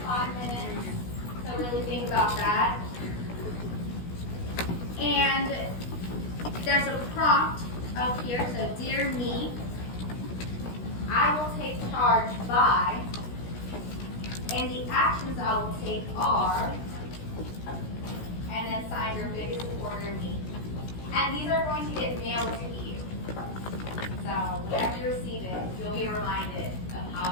5 minutes to really think about that. And there's a prompt up here, so dear me, I will take charge by, and the actions I will take are, and then sign your biggest supporter, me. And these are going to get mailed to you. So whenever you receive it, you'll be reminded of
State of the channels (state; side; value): late; right; 16 ms